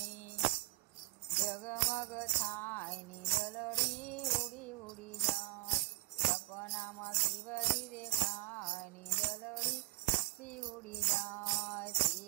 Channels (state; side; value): quieter; left; 21.5 dB